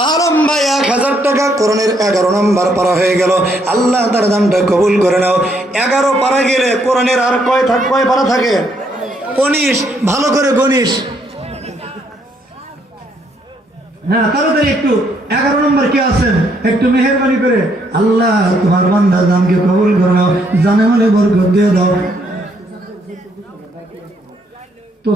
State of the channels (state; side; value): normal; both; correlation 0.71